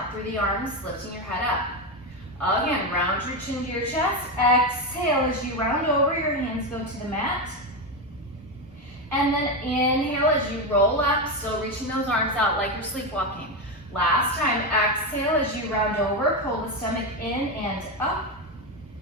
through the arms, lifting your head up. Again, round your chin to your chest. Exhale as you round over, your hands go to the mat. And then inhale as you roll up, still reaching those arms out like you're sleepwalking. Last time, exhale as you round over, pull the stomach in and up.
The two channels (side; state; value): both; normal; correlation 0.12